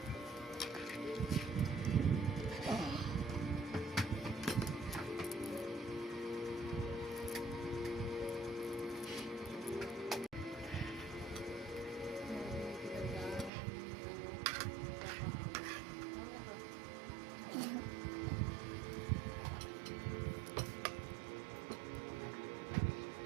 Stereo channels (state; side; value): drops out; left; at 13.5 s